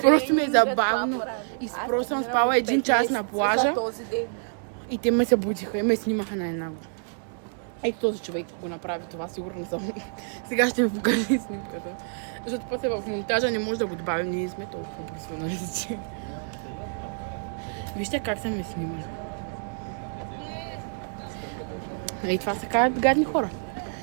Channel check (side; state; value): left; silent; digital silence